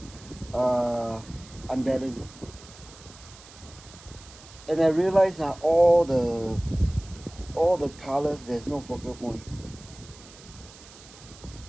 unbalanced, and I realized all the colors, there's no focal point.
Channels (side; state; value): right; noise; hiss, 20 dB below the sound